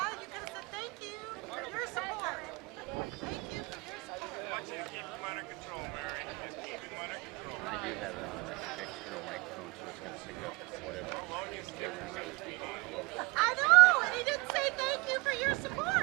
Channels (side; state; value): left; quieter; 26.5 dB